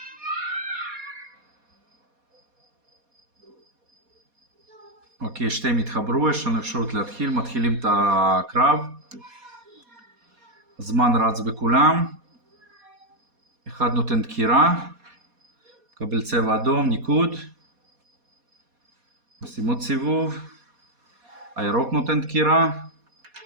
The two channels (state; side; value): late; left; 4.2 ms